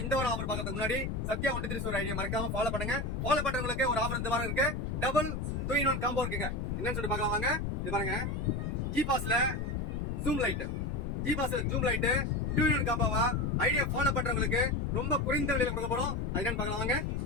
இந்த ஒரு ஆஃபர் பார்க்கறதுக்கு முன்னாடி சத்யா ஒன்று ஸ்டோர் ஐடியா மறக்காம ஃபாலோ பண்ணுங்க. ஃபாலோ பண்றவங்களுக்கு ஒரு ஆஃபர் இந்த வாரம் இருக்கு. டபுள் 2-in-1 காம்போ இருக்குங்க. என்னன்னு சொல்லி பார்க்கலாம் வாங்க. இது பாருங்க, ஜி பாஸ்ல ஜூம் லைட், ஜி பாஸ்ல ஜூம் லைட் 2-in-1 காம்போவா ஐடியா ஃபாலோ பண்றவங்களுக்கு ரொம்ப குறைந்த விலையில கொடுக்க போறோம். அது என்னன்னு பார்க்கலாம் வாங்க.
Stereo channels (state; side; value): noise; left; rumble, 2 dB below the sound